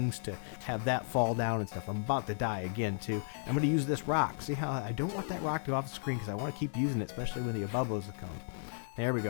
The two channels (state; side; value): silent; right; digital silence